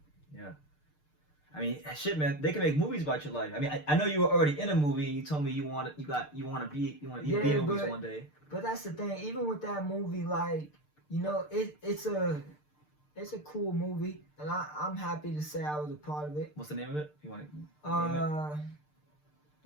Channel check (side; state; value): right; late; 6.7 ms